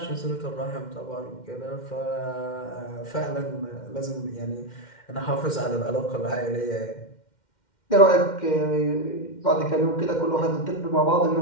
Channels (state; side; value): late; right; 2.1 ms